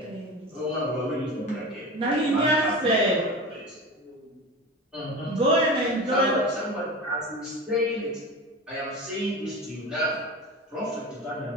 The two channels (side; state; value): both; normal; correlation 0.29